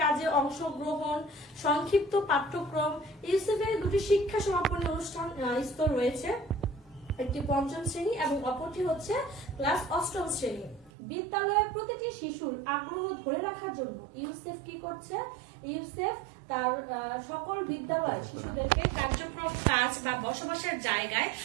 কাজে অংশগ্রহণ, সংক্ষিপ্ত পাঠ্যক্রম। ইউসেফের 2টি শিক্ষা সমাপনী অনুষ্ঠান স্তর রয়েছে, একটি 5ম শ্রেণী এবং অপরটি হচ্ছে ক্লাস 8ম শ্রেণী। বিদ্যালয়ে প্রতিটি শিশুর আগ্রহ ধরে রাখার জন্য ইউসেফ কি করছে, ইউসেফ তার সকল বিদ্যালয় শিশুদেরকে কার্যক্রম কাজ বা বসবাসের জায়গায়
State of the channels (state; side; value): drops out; left; at 10.9 s